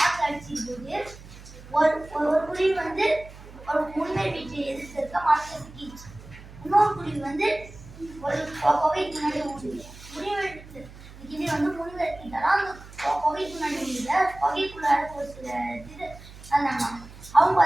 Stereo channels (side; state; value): right; noise; hum, 18 dB below the sound